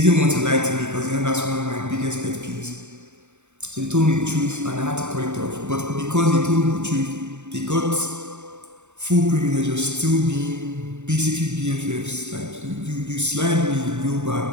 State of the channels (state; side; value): late; left; 0.83 ms